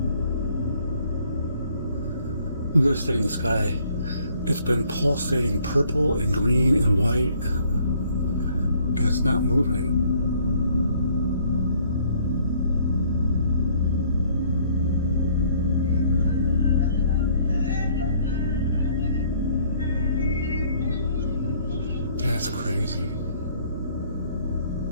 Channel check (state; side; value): inverted; both; correlation -0.61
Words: Look at this thing in the sky. It's been pulsating purple and green and white, and it's not moving. That's crazy.